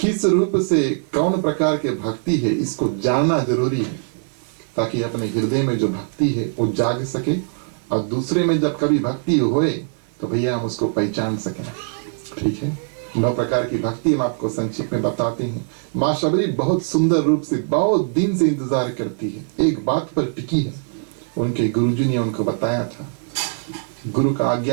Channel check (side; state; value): left; silent; 63 dB below the other